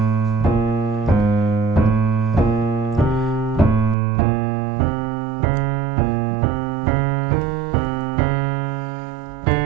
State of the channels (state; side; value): drops out; left; at 4.0 s